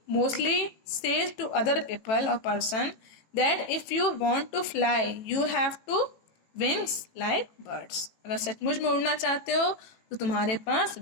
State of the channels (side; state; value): right; late; 18 ms